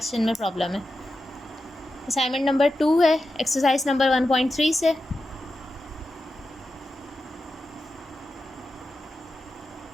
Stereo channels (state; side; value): normal; both; correlation 0.90